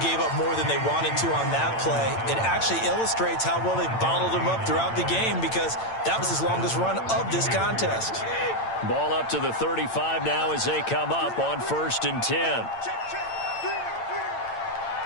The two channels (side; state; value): right; late; 8.9 ms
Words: up more than they wanted to on that play, it actually illustrates how well they bottled him up throughout the game because that was his longest run of this contest. Ball up to the 35 now as they come up on 1st and 10.